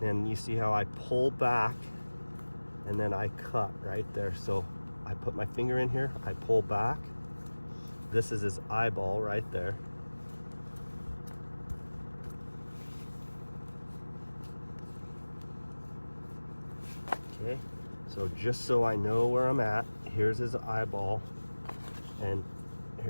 And you see how I pull back and then I cut right there. So I put my finger in here, I pull back. This is his eyeball right there. Okay, so just so I know where I'm at, here's his eyeball, and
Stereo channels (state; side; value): inverted; both; correlation -1.00